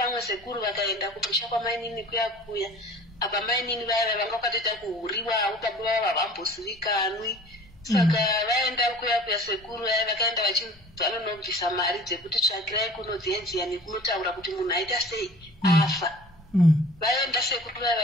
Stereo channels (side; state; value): both; normal; correlation 0.44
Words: sekuru vakaenda kumusha kwamainini kuya apa mainini vaya vanga vakatoita kuhuriwawo baba vavo havambosivikanwi. Saka vaenda kuya sekuru vaya vakaenda vanonobvisa mari dzekuti tsvagirai kuno dziyedziya nekunotaura kuti munhu aita sei afa. Vaenda sekuru vaya